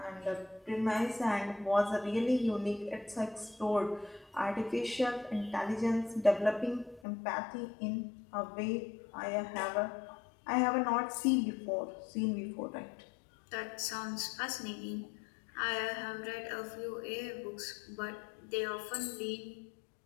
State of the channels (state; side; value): drops out; right; at 7.0 s